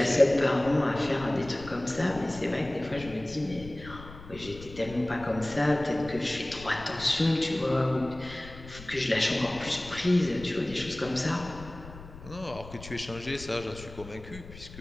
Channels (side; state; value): left; noise; rumble, 15 dB below the sound